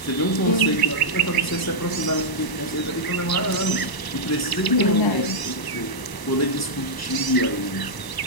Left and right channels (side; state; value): right; late; 1.0 ms